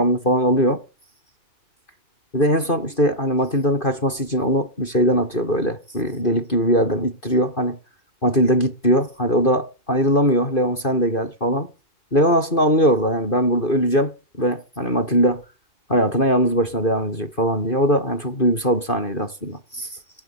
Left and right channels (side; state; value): right; late; 2.5 ms